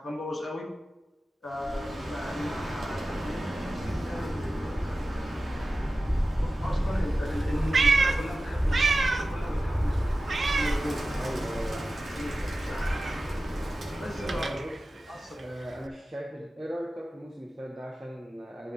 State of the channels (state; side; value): normal; both; correlation 0.94